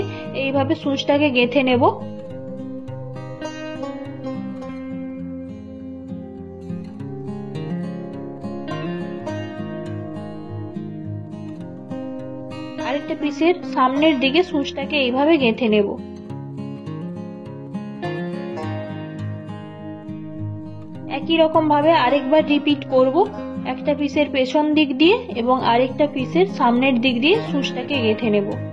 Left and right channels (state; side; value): identical; both; correlation 1.00